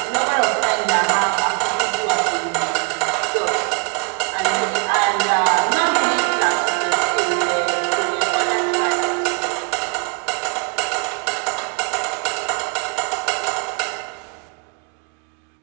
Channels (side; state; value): left; quieter; 35.5 dB